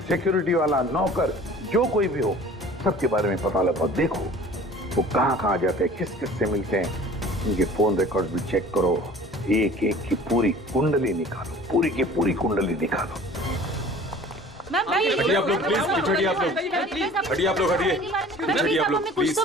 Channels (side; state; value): both; normal; correlation 0.46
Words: सिक्योरिटी वाला, नौकर, जो कोई भी हो, सबके बारे में पता लगाओ। देखो वो कहाँ जाते हैं, किस किस से मिलते हैं, उनके फोन रिकॉर्ड भी चेक करो। एक एक की पूरी कुंडली निकालो, पूरी की पूरी कुंडली निकालो। हटिए आप लोग प्लीज, हटिए आप लोग, हटिए आप लोग, हटिए, हटिए आप लोग प्लीज।